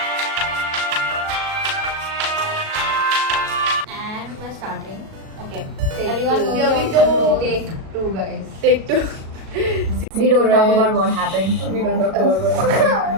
And we're starting. Okay. Take Everyone two. knows Here your we go. controls. Take two, guys. Take two. We don't talk about what happened. We don't talk about what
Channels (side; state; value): left; late; 37 ms